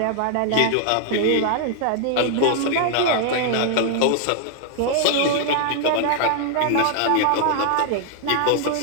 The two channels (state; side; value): different; both; correlation 0.00